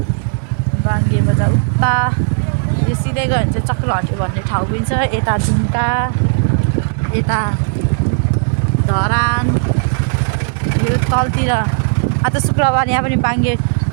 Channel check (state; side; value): silent; left; digital silence